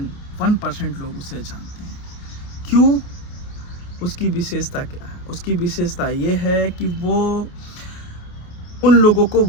लोग उसे जानते हैं। क्यों? उसकी विशेषता क्या है? उसकी विशेषता ये है कि वो उन लोगों को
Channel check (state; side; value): late; right; 28 ms